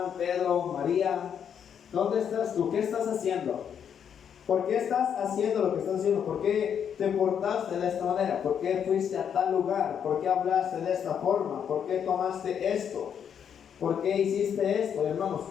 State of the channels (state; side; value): quieter; right; 8.1 dB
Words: Pedro, María, ¿dónde estás tú? ¿Qué estás haciendo? ¿Por qué estás haciendo lo que estás haciendo? ¿Por qué te portaste de esta manera? ¿Por qué fuiste a tal lugar? ¿Por qué hablaste de esta forma? ¿Por qué tomaste esto? ¿Por qué hiciste esto, hermanos?